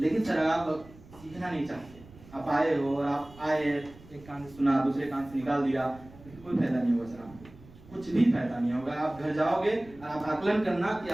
सर आप सीखना नहीं चाहते, आप आए हो और आप आए एक कान से सुना दूसरे कान से निकाल दिया, कोई फायदा नहीं होगा सर, आपको कुछ भी फायदा नहीं होगा। आप घर जाओगे और आप आकलन करना कि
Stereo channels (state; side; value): noise; right; rumble, 21 dB below the sound